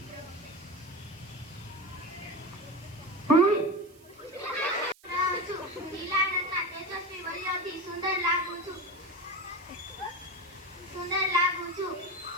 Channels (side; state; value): right; noise; hiss, 27 dB below the sound